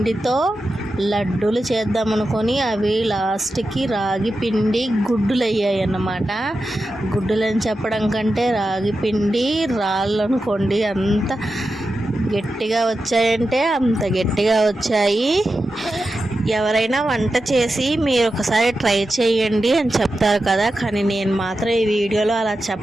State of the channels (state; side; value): normal; both; correlation 0.91